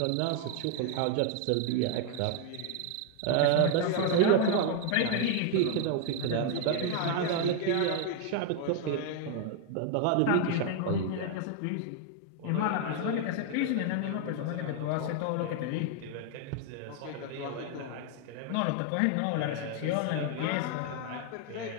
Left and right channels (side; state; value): both; different; correlation 0.00